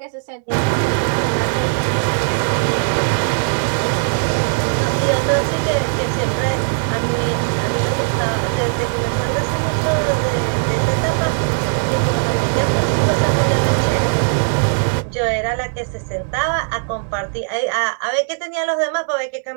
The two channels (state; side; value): silent; left; digital silence